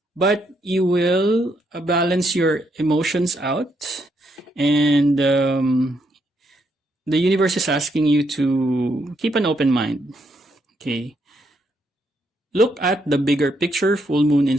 but you will balance your emotions out, and the universe is asking you to keep an open mind. Okay. Look at the bigger picture, full moon in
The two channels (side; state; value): both; normal; correlation 0.76